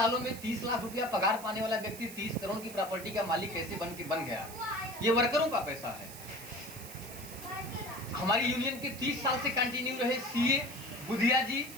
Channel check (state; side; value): noise; right; hiss, 14 dB below the sound